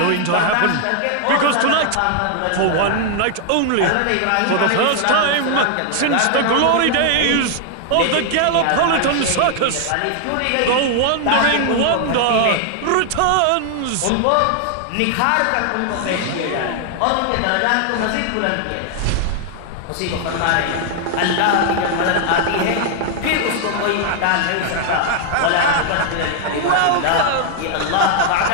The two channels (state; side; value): different; both; correlation 0.00